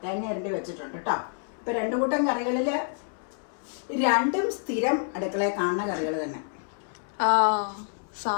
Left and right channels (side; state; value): right; silent; 57 dB below the other